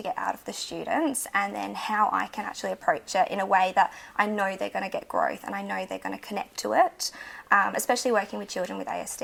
get out of the students and then how I can actually approach it in a way that I know they're going to get growth and I know they're going to connect to it. Especially working with children with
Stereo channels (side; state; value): both; identical; correlation 1.00